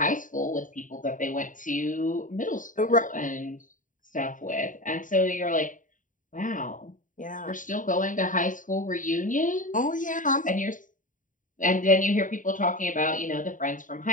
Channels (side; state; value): right; late; 0.38 ms